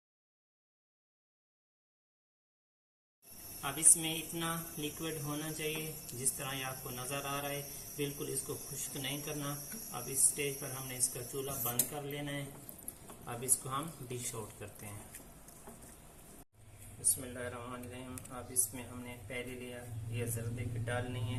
अब इसमें इतना लिक्विड होना चाहिए जिस तरह ये आपको नज़र आ रहा है, बिल्कुल इसको खुश्क नहीं करना। अब इस स्टेज पर हमने इसका चूल्हा बंद कर लेना है। अब इसको हम डिश आउट करते हैं। बिस्मिल्लाहिर्रहमानिर्रहीम। अब इसमें हमने पहले लिया ये ज़र्दे की डालनी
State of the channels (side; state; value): both; identical; correlation 1.00